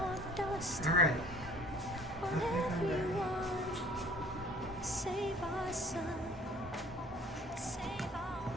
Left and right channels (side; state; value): both; normal; correlation 0.52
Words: dust. All right. On everyone. Save our sun, save our